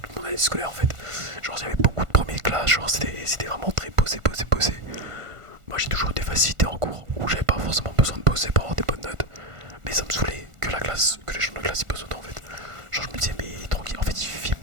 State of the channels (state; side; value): late; left; 1.5 ms